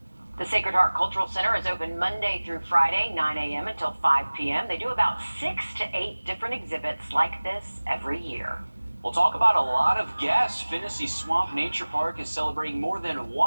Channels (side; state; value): both; inverted; correlation -1.00